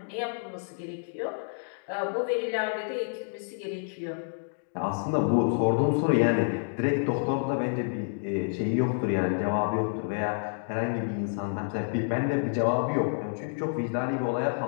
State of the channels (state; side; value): silent; right; digital silence